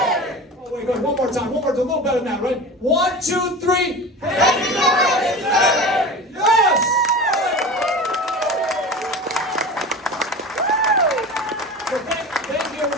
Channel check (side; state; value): both; normal; correlation 0.32